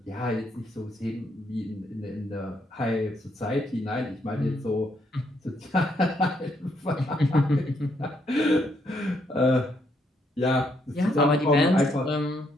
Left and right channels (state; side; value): normal; both; correlation 0.74